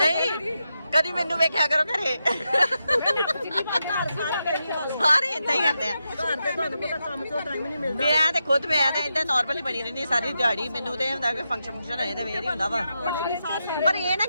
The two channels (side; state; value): both; inverted; correlation -0.87